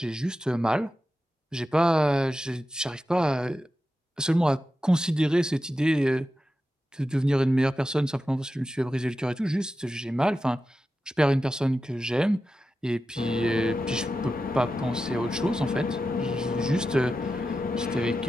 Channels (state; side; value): normal; both; correlation 0.91